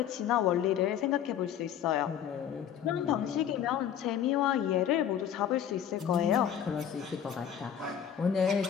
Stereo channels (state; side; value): quieter; right; 9.3 dB